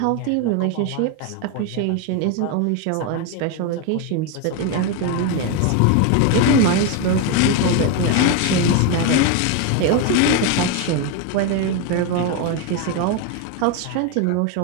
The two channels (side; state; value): both; different; correlation 0.02